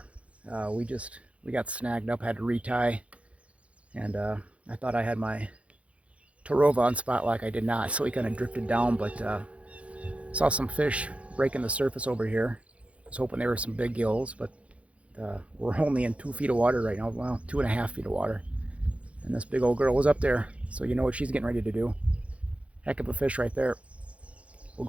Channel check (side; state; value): left; late; 0.063 ms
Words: We got snagged up, had to retie, and I thought I had my Tarova on spot like I did not, so he kind of drifted down, but saw some fish breaking the surface over here. I was hoping there were some big gills, but we're only in 2 feet of water right now, well, 2.5 feet of water. And this big old girl was up there, so you know what she's getting ready to do. Heck of a fish right there. We'll